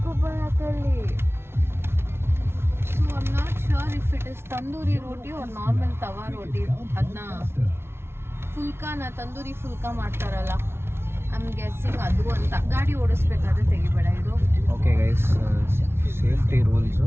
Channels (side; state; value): left; late; 0.12 ms